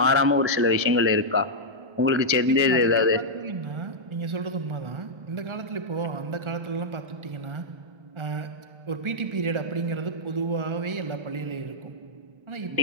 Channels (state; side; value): late; left; 1.3 ms